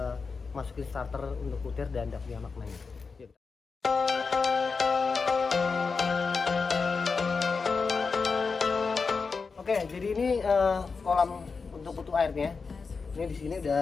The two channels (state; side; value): quieter; right; 4.8 dB